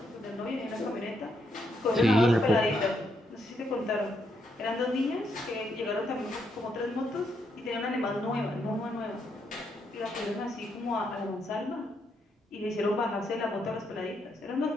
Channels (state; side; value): normal; both; correlation 0.77